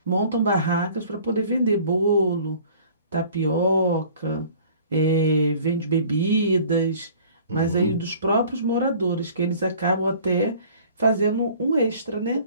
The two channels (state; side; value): inverted; both; correlation -0.50